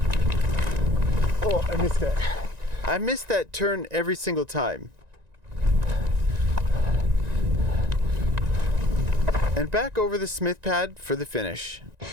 Oh, I missed that. I missed that turn every single time. And back over the smith pad for the finish.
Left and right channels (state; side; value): late; left; 1.9 ms